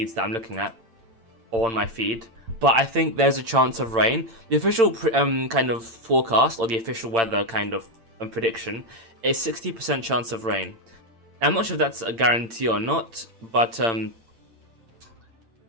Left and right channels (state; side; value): late; left; 8.8 ms